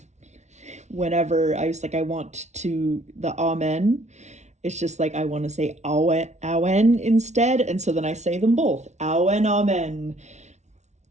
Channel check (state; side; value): late; left; 0.33 ms